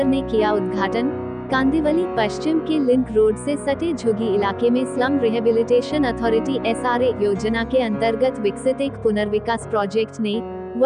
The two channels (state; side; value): identical; both; correlation 1.00